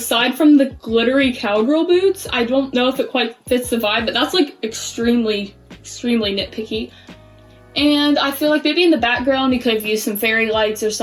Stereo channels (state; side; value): identical; both; correlation 1.00